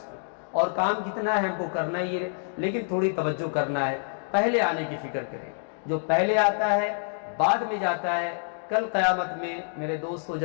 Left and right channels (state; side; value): silent; right; digital silence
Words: اور کام کتنا ہے، ہم کو کرنا ہی ہے، لیکن تھوڑی توجہ کرنا ہے، پہلے آنے کی فکر کریں۔ جو پہلے آتا ہے بعد میں جاتا ہے، کل قیامت میں میرے دوستو